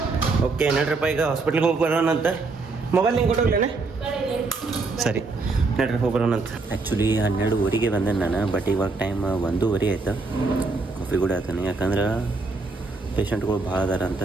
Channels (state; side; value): quieter; left; 3.8 dB